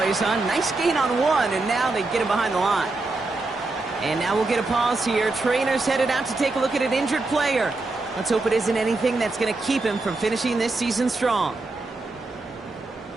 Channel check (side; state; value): left; quieter; 3.3 dB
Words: huh? Nice gain on 1, and now they get him behind the line. And now we'll get a pause here. Trainer's headed out to take a look at an injured player. Let's hope it isn't anything that's going to keep him from finishing this season strong.